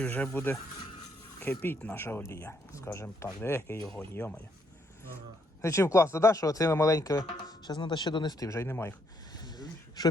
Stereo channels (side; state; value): both; normal; correlation 0.73